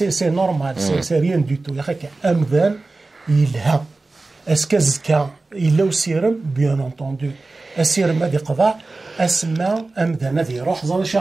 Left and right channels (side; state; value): left; quieter; 3.4 dB